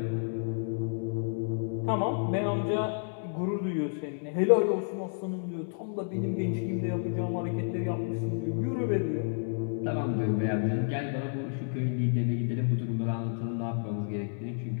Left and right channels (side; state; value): right; silent; digital silence